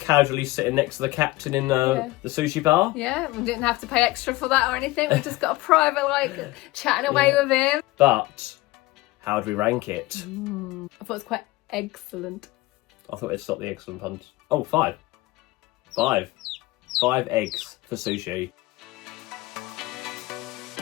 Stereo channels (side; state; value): right; quieter; 19.7 dB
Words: sitting next to the captain in the sushi bar. Yeah, we didn't have to pay extra for that or anything. We just got a private, like, chatting away with him. But how would we rank it? I thought it was quite excellent. I thought it'd stop the excellent puns. Oh, 5. 5. 5 eggs for sushi.